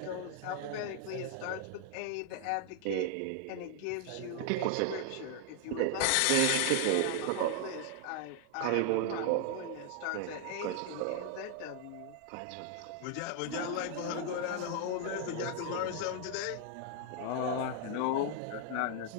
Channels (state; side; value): different; both; correlation 0.00